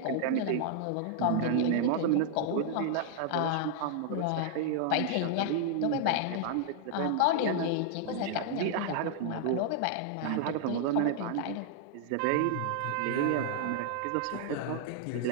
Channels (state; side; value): different; both; correlation -0.01